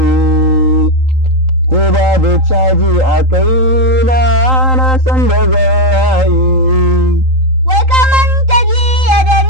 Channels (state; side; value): late; left; 3.8 ms